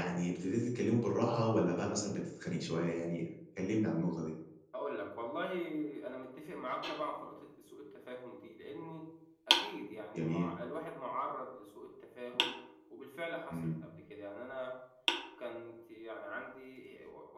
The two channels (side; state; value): both; identical; correlation 1.00